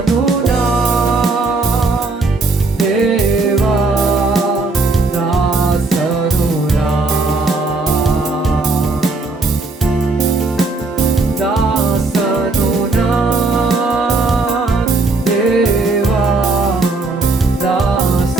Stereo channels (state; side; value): quieter; left; 3.5 dB